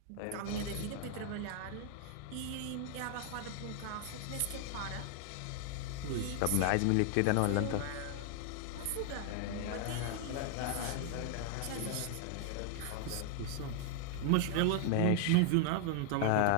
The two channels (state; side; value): different; both; correlation 0.00